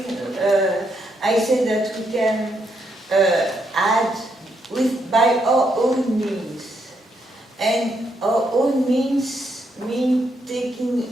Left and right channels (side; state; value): both; normal; correlation 0.77